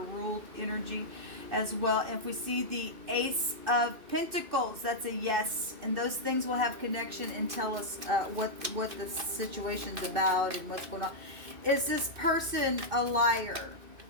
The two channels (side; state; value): left; late; 2.5 ms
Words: energy as well. And if we see the Ace of Pentacles, that's a yes. And those things will have connection and tell us what the situation's about and what's going on. Is this person a liar?